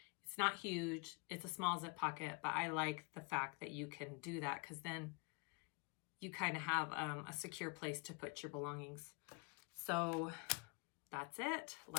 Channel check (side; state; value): right; quieter; 31.7 dB